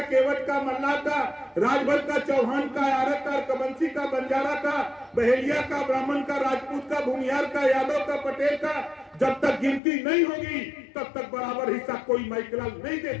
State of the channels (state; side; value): drops out; right; at 9.8 s